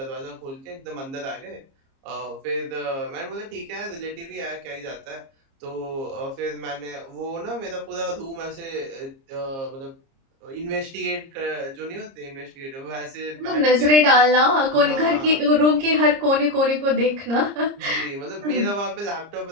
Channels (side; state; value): left; late; 30 ms